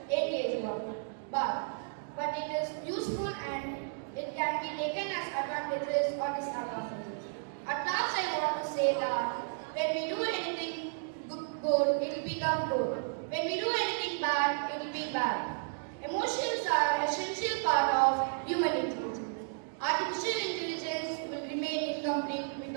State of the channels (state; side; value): silent; left; digital silence